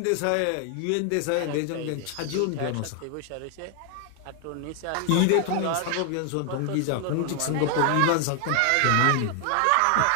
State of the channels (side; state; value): both; different; correlation 0.00